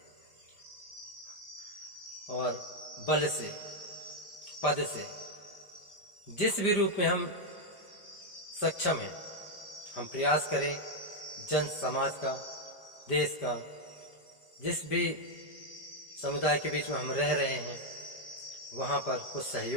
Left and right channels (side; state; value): right; late; 5.1 ms